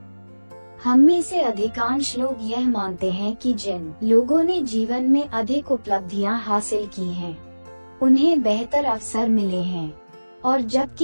हम में से अधिकांश लोग यह मानते हैं कि जिन लोगों ने जीवन में अधिक उपलब्धियां हासिल की हैं, उन्हें बेहतर अवसर मिले हैं, और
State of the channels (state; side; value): inverted; both; correlation -1.00